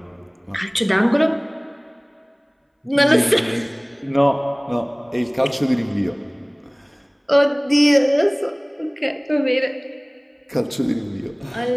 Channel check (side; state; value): both; identical; correlation 1.00